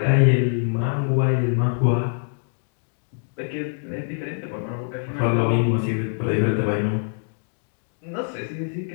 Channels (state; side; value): silent; right; digital silence